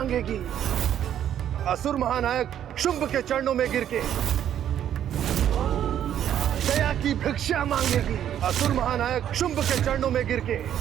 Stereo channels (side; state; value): left; quieter; 10.3 dB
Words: असुर महानायक शुंभ के चरणों में गिर के दया की भिक्षा मांगेगी। असुर महानायक शुंभ के चरणों में गिर के